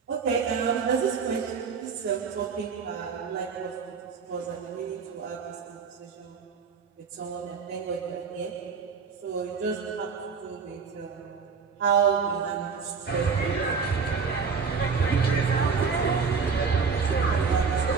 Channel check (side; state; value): left; quieter; 5.5 dB